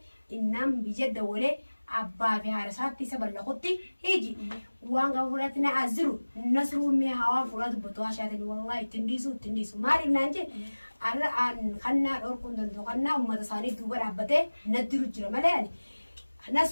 innaan biyya dawalee abbaa fi haadha isaatti isa ballaqutti hiji waan gaba fuudhatti na aziru nasruun mee hawaan fuudhaa dubbatu haashaatanii wallahi ittiin dhiisu maaliif naan jee arra kannaa dhorkuun danda'u kannaa uummata isaanii duuba dhaabbatee naddiru jira malee ani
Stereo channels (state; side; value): inverted; both; correlation -1.00